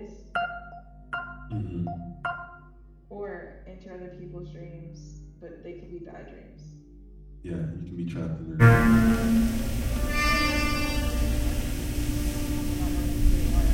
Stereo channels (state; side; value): identical; both; correlation 1.00